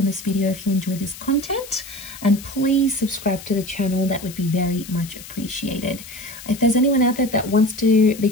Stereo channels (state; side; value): noise; left; hiss, 15 dB below the sound